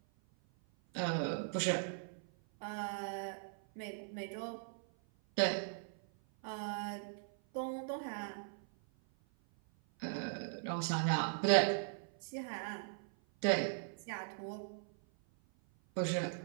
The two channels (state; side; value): silent; left; 52 dB below the other